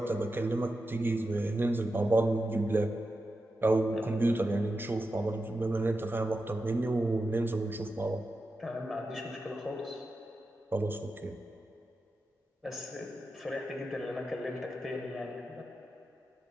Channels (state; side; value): normal; both; correlation 0.90